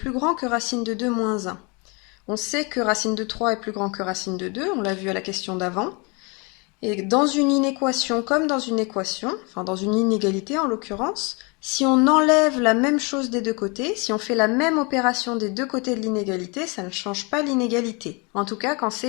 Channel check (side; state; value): right; quieter; 30.4 dB